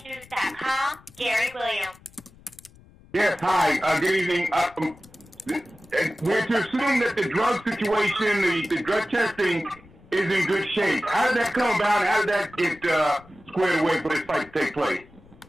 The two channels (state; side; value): noise; left; rumble, 25 dB below the sound